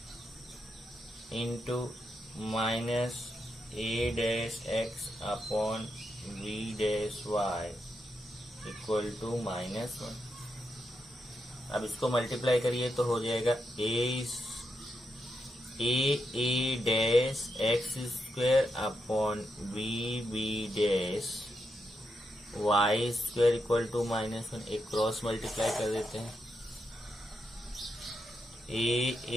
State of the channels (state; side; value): normal; both; correlation 0.84